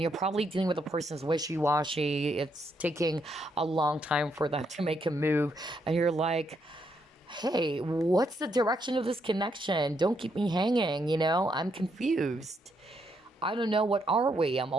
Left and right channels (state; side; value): normal; both; correlation 0.77